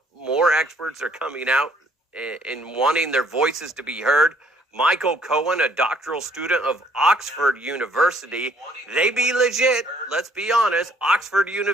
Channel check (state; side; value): normal; both; correlation 0.63